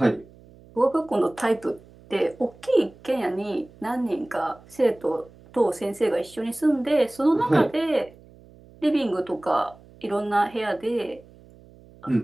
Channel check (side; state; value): right; noise; hum, 24 dB below the sound